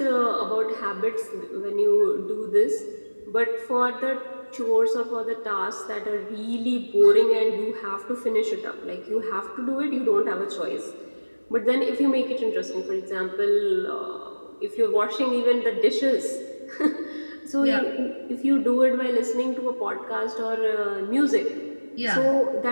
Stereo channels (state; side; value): inverted; both; correlation -1.00